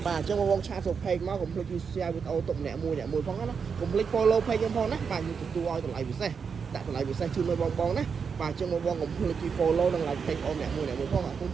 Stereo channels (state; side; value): quieter; left; 6.1 dB